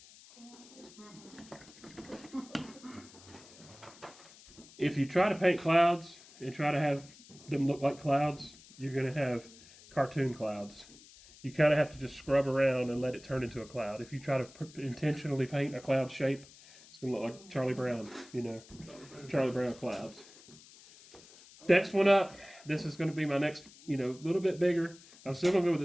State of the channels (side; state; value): left; noise; hiss, 22 dB below the sound